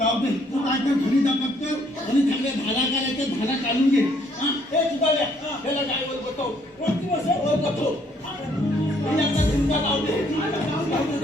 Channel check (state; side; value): normal; both; correlation 0.66